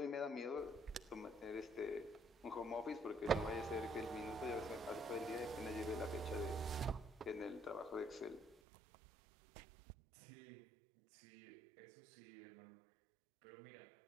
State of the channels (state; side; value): drops out; left; at 8.6 s